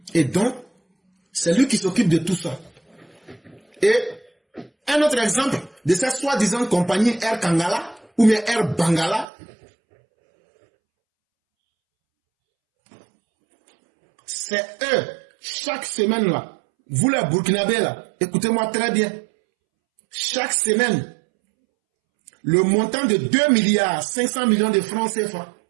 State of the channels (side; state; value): left; drops out; at 9.2 s